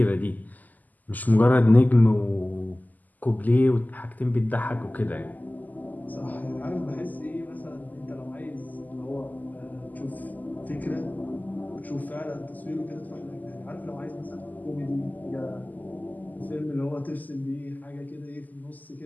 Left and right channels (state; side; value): late; right; 0.082 ms